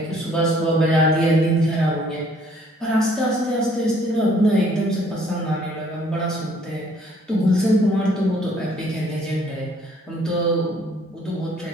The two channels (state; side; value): normal; both; correlation 0.61